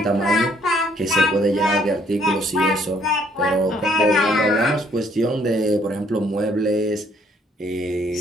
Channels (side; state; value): both; normal; correlation 0.65